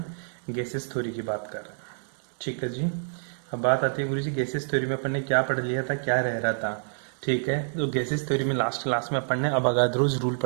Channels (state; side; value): silent; left; 60 dB below the other